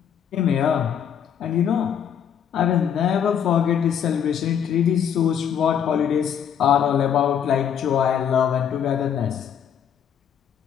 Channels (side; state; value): right; quieter; 8.5 dB